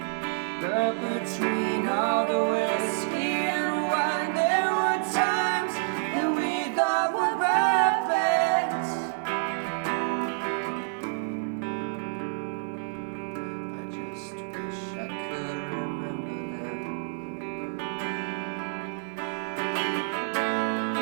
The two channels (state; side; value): silent; left; digital silence